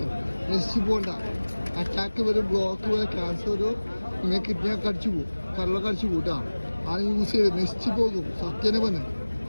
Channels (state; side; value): inverted; both; correlation -1.00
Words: നശിച്ചു പോകണ്ട. അറ്റാക്ക് വരും, ബ്ലോക്ക് വരും, ക്യാൻസർ വരും, നിങ്ങൾ കിഡ്നിയൊക്കെ അടിച്ചു പോകും, കരളൊക്കെ അടിച്ചു പോകും കേട്ടോ. അത് യൂസ് ചെയ്ത് നശിച്ചു പോകും. സത്യനെ പറഞ്ഞേ,